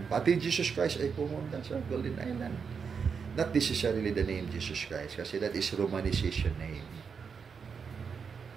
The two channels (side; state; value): left; quieter; 6.1 dB